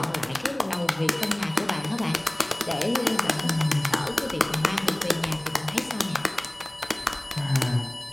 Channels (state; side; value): noise; right; hum, 28 dB below the sound